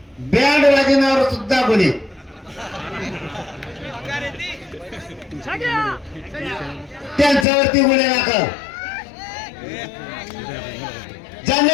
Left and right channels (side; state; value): right; drops out; at 7.5 s